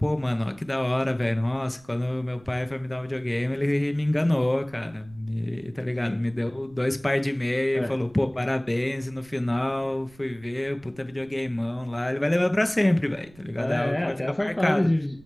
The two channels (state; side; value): noise; right; rumble, 25 dB below the sound